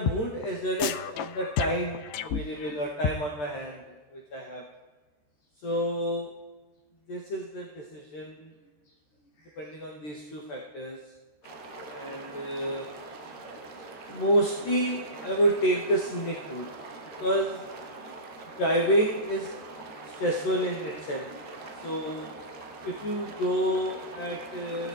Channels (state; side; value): late; right; 14 ms